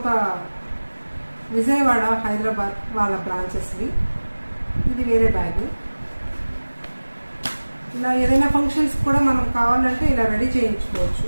విజయవాడ, హైదరాబాద్ వాళ్ళ బ్రాంచెస్వి. ఇది వేరే బ్యాగ్. ఇలా ఏదైనా ఫంక్షన్స్ కూడా మనం కావాలంటే ఇలా రెడీ చేయించుకోవచ్చు.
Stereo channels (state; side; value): inverted; both; correlation -1.00